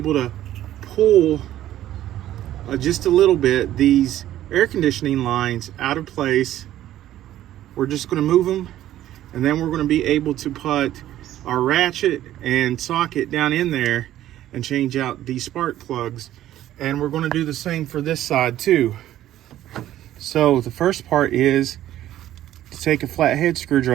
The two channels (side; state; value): left; quieter; 13.0 dB